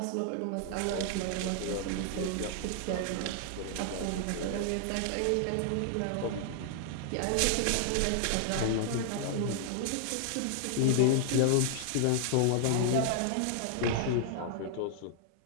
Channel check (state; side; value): different; both; correlation -0.01